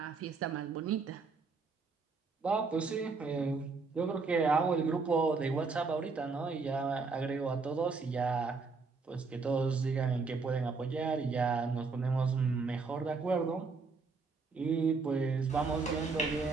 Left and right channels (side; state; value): left; quieter; 4.5 dB